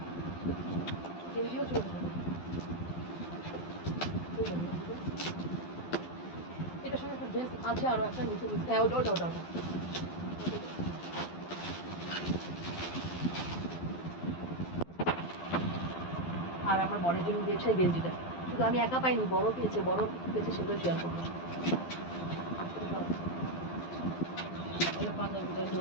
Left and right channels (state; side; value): late; right; 12 ms